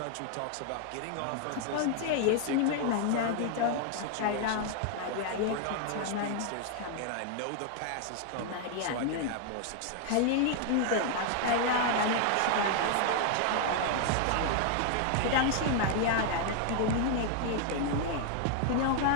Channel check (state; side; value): different; both; correlation 0.00